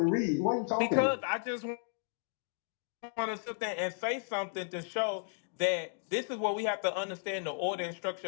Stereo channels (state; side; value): silent; right; digital silence